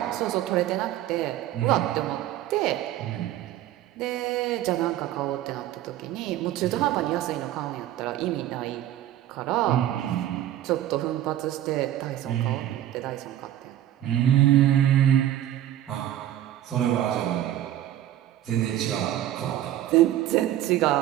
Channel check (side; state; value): left; quieter; 12.7 dB